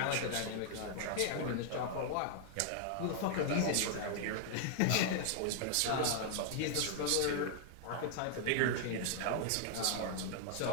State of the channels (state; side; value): different; both; correlation -0.01